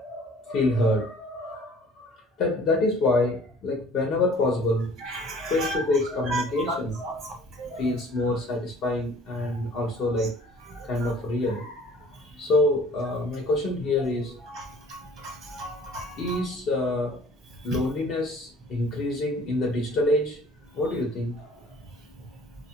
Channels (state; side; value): normal; both; correlation 0.52